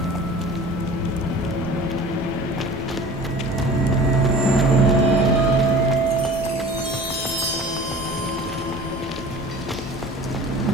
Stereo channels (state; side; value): normal; both; correlation 0.42